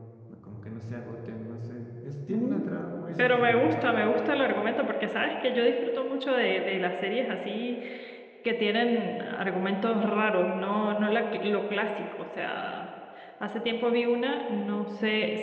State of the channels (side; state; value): both; identical; correlation 1.00